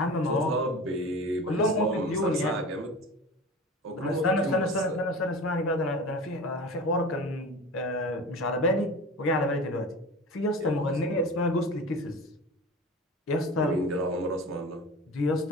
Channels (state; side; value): normal; both; correlation 0.34